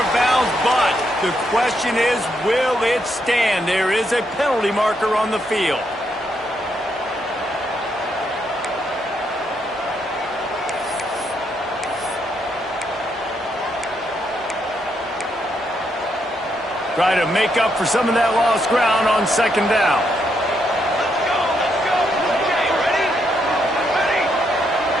of bounds, but the question is, will it stand? There is a penalty marker on the field. Try to make up for some of that lost ground on second down.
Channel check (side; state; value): both; normal; correlation 0.77